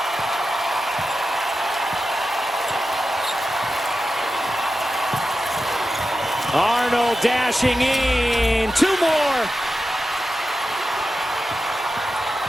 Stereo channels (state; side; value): normal; both; correlation 0.91